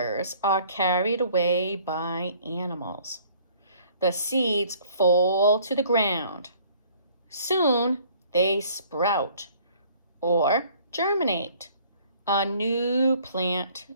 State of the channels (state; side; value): inverted; both; correlation -0.56